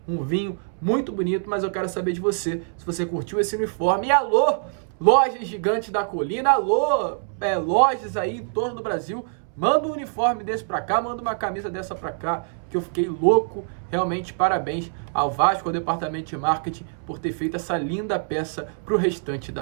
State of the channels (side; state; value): left; silent; 62 dB below the other